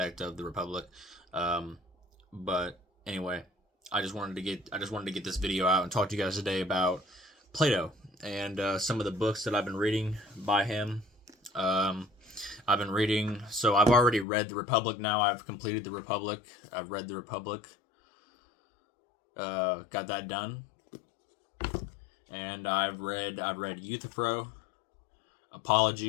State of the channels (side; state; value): right; drops out; at 14.2 s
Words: of the Republic. Um, but anyway, I just wanted to get this video out and talk to you guys today about Plato and some of the books that I've been reading by him. Um, I've been reading, so I've already read the Republic. Now I've completed the Republic. I've read the Republic. Got that done, and I've read Euthyphro,